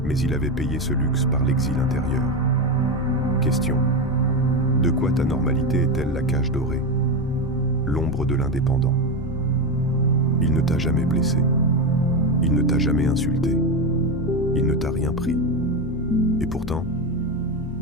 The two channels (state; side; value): normal; both; correlation 0.14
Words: mais il avait payé ce luxe par l'exil intérieur. Question. De quoi ta normalité est-elle la cage dorée ? L'ombre de l'indépendant. Il ne t'a jamais blessé. Il ne t'a jamais insulté. Il ne t'a rien pris. Et pourtant,